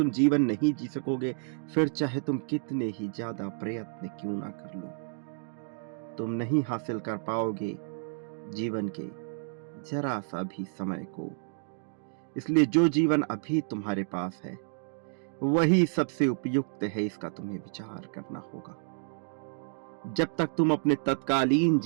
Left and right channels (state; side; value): silent; left; digital silence